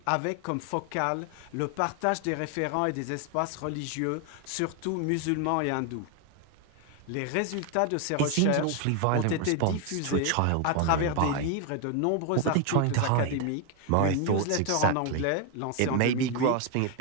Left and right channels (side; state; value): both; different; correlation 0.01